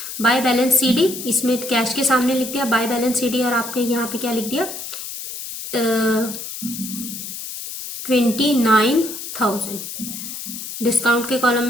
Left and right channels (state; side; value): noise; left; hiss, 8 dB below the sound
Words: बाय बैलेंस CD, इसमें कैश के सामने लिख दिया बाय बैलेंस CD, और आपने यहाँ पे क्या लिख दिया? 29,000। डिस्काउंट के कॉलम